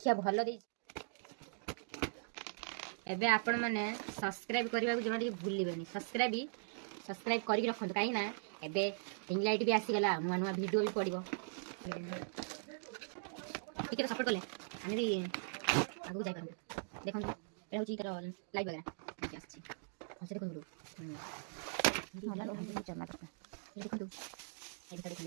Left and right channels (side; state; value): left; silent; digital silence